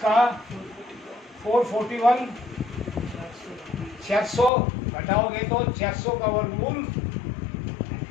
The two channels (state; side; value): drops out; right; at 4.5 s